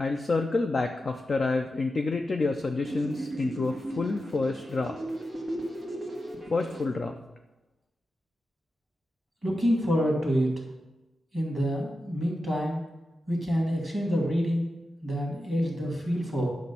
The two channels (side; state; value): both; normal; correlation 0.90